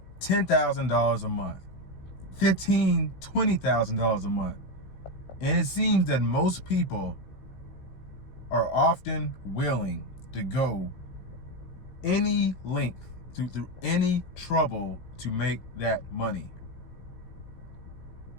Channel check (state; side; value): late; right; 16 ms